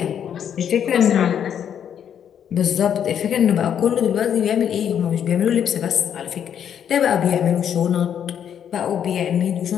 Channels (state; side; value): quieter; right; 8.9 dB